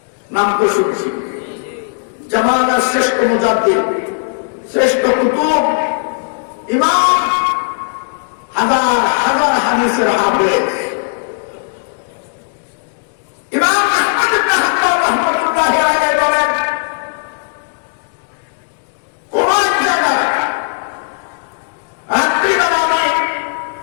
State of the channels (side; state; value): right; silent; digital silence